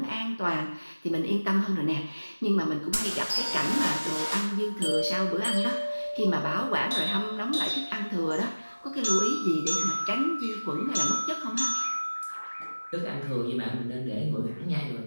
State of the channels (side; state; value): both; inverted; correlation -1.00